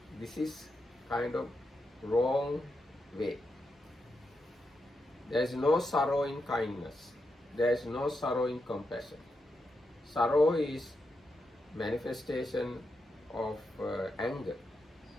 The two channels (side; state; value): both; normal; correlation 0.85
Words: This is kind of wrong way. There is no sorrow in kindness. There is no sorrow in compassion. Sorrow is manifestation of anger.